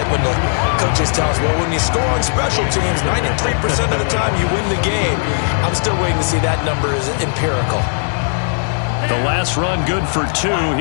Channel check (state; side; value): silent; right; 68 dB below the other